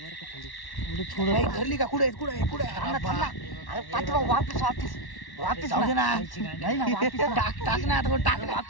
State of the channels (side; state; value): right; late; 1.1 ms